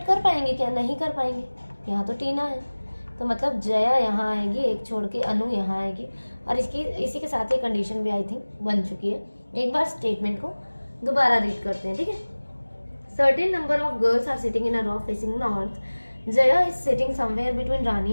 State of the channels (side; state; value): both; inverted; correlation -1.00